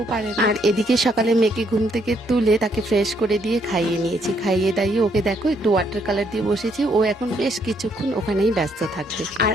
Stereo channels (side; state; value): both; normal; correlation 0.71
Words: পারে না। আর এদিকে সকালে মেয়েকে ঘুম থেকে তুলে তাকে ফ্রেশ করে দিয়ে খাইয়ে নিয়েছি, খাইয়ে দাইয়ে ওকে দেখো একটু ওয়াটার কালার দিয়ে বসেছি, ও এখন বেশ কিছুক্ষণ ওখানেই ব্যস্ত থাকবে। আর